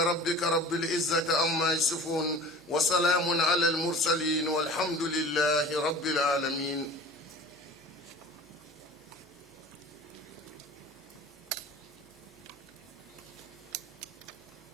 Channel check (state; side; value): normal; both; correlation 0.40